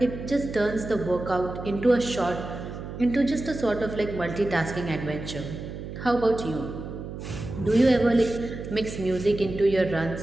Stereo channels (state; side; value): noise; right; hum, 9 dB below the sound